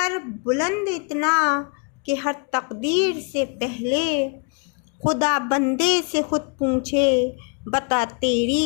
बुलंद इतना कि हर तकदीर से पहले, खुदा बंदे से खुद पूछे, बता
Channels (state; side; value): quieter; right; 36.6 dB